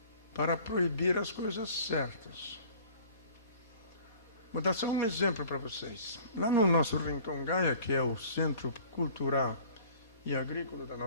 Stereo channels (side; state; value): both; inverted; correlation -0.49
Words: para proibir as coisas certas. Vou dar só um exemplo para vocês. Lá no nosso Rincon Gaia, que é o centro cultural e agrícola da